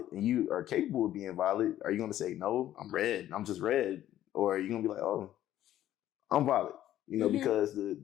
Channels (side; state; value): right; quieter; 12.6 dB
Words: And you are capable of being violet. Are you gonna say, no, I'm red, I'm just red? Or are you gonna be like, oh, I'm violet, you know, because